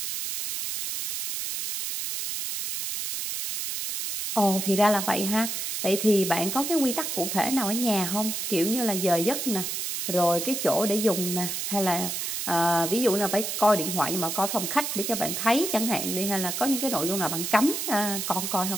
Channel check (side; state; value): right; noise; hiss, 3 dB below the sound